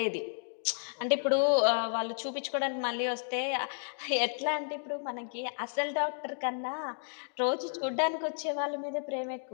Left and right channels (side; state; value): right; silent; digital silence